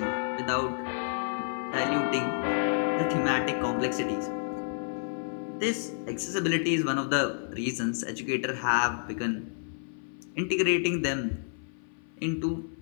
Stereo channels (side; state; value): right; silent; 55 dB below the other